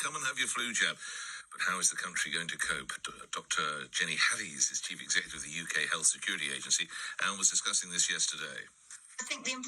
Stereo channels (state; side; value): identical; both; correlation 1.00